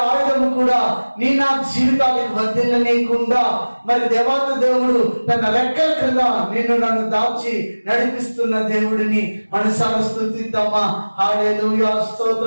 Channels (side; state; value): both; inverted; correlation -1.00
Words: ఆయుధము కూడా నీ నా జీవితానికి వర్ధిల్లనీయకుండా మరి దేవత దేవుడు తన రెక్కల క్రింద నిన్ను నన్ను దాచి నడిపిస్తున్న దేవుడిని మనసారా స్తుతిద్దామా. హల్లెలూయా,